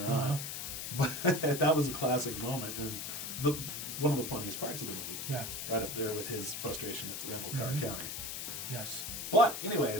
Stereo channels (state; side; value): noise; left; hiss, 5 dB below the sound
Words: on. But that was a classic moment, and one of the funniest parts of the movie. Yeah. Right up there with his frustration at the rental car counter. Yes. But